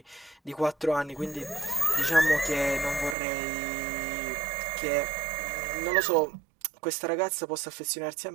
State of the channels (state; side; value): drops out; left; at 3.2 s